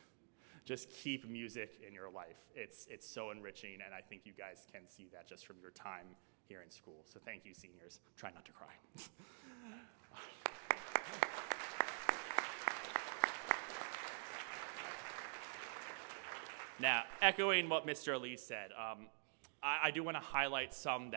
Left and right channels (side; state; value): left; silent; digital silence